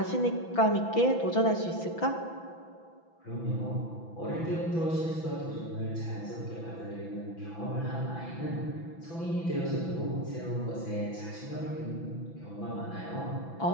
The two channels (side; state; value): right; late; 6.0 ms